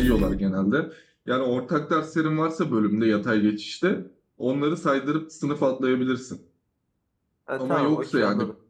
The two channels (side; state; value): both; identical; correlation 1.00